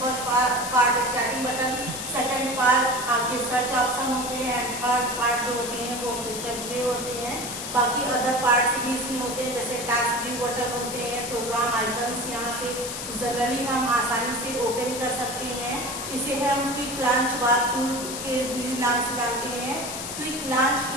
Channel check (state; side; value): noise; left; hiss, 7 dB below the sound